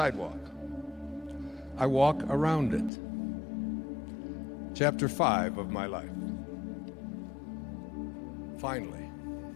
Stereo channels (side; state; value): right; drops out; at 2.9 s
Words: I walk around it. Chapter 5 of my life. Finally,